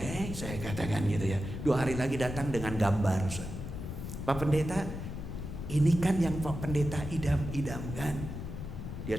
saya katakan gitu ya. 2 hari lagi datang dengan gambar. Pak Pendeta, ini kan yang Pak Pendeta idam-idamkan.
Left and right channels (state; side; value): noise; left; rumble, 7 dB below the sound